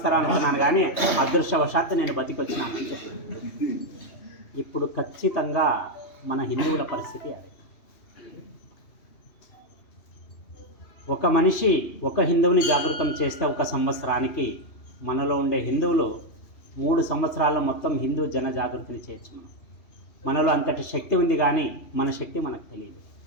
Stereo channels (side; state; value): right; late; 3.0 ms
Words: అనుకున్నాను, కానీ అదృష్టవశాత్తు నేను బతికొచ్చినాను అని చెప్పి. ఇప్పుడు ఖచ్చితంగా మన హిందువుల పరిస్థితి అదే. ఒక మనిషి ఒక హిందువుని జాగృతం చేస్తే ఒక సంవత్సరానికి మనలో ఉండే హిందువులు 3 సంవత్సరాల్లో మొత్తం హిందూ జన జాగృతిని చేయొచ్చు. మనలో అంతటి శక్తి ఉంది, కానీ మన శక్తి మనకు తెలియదు.